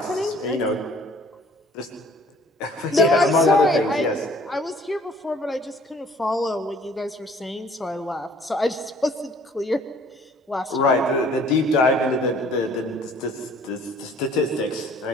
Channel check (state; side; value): normal; both; correlation 0.55